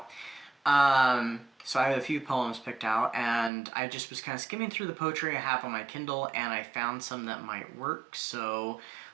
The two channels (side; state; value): left; drops out; at 3.5 s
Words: So I have a few poems picked out, and I just was kind of skimming through the poetry I have on my Kindle, and I found some that might work, so